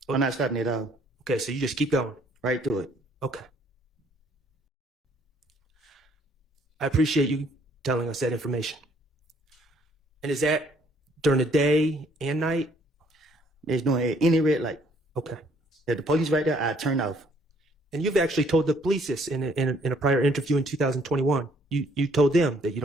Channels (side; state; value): both; normal; correlation 0.64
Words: I'm not stopping at all. Okay, so you just keep going. Right through it. Okay. I appreciate you telling us that information. And is that during the day and night? There's no any red light. Okay. If the police right there, I turn off. And you've actually told the police this in a prior interview in 2021. You told them that you